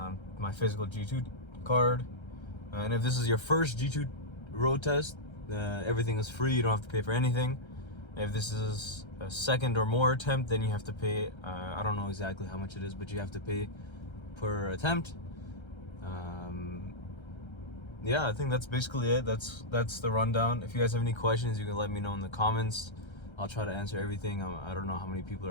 My physical G2 card. And if this is your first G2 road test, everything is free. You don't have to pay for anything. If this is a second or more attempt, then you have to pay. I don't know exactly how much it is, but you have to pay per attempt. Yeah, I think that's basically it. That's the rundown. If you guys have any questions, you can let me know in the comments. I'll try to answer everything. I don't know how many people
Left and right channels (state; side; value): late; right; 1.3 ms